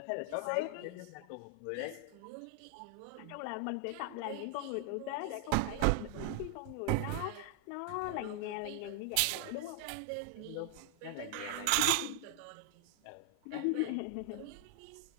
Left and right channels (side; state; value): both; different; correlation 0.00